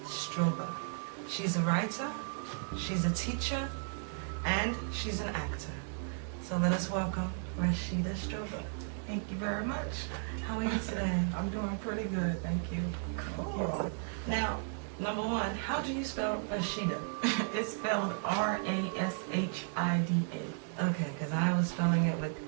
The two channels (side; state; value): left; silent; 55 dB below the other